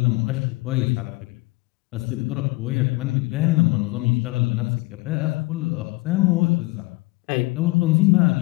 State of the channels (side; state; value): right; quieter; 22.5 dB